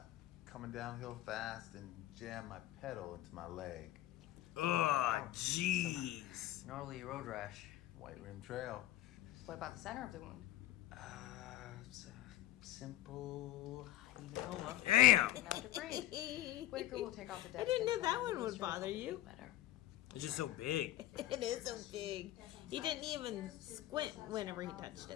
coming downhill fast and jammed my pedal into my leg. Ugh, jeez. Gnarly road rash. White Rim Trail. What about the center of the wound? It's a simple hematoma. Damn! Didn't have to breathe. Whitaker will take off the dead I didn't know skin that from one the would blister bother and you. better. It's just so big. It is so big. He didn't even squint whenever he touched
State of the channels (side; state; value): right; quieter; 14.5 dB